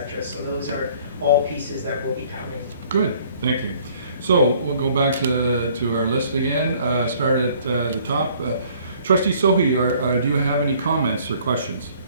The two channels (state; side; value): inverted; both; correlation -0.57